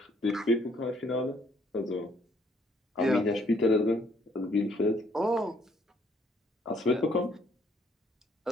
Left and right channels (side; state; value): both; normal; correlation 0.66